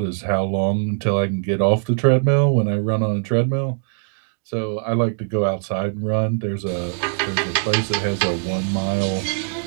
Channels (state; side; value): silent; left; digital silence